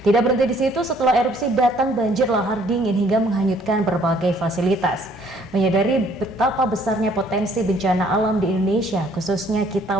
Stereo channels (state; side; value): normal; both; correlation 0.61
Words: Tidak berhenti di situ, setelah erupsi datang banjir lahar dingin hingga menghanyutkan berbagai fasilitas. Menyadari betapa besarnya potensi bencana alam di Indonesia, khususnya kita